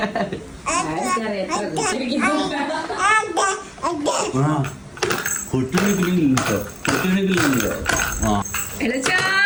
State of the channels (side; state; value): both; identical; correlation 1.00